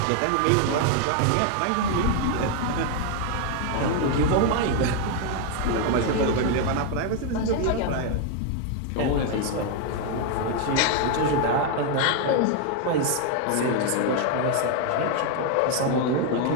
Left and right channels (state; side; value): different; both; correlation 0.01